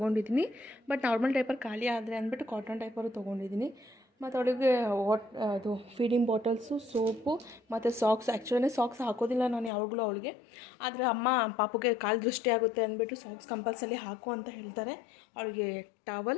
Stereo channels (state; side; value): drops out; right; at 9.7 s